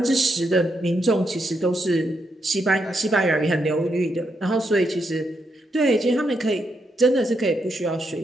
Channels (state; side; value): normal; both; correlation 0.80